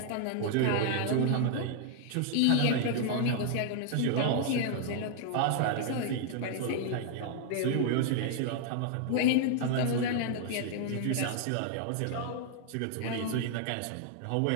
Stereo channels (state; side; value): different; both; correlation 0.00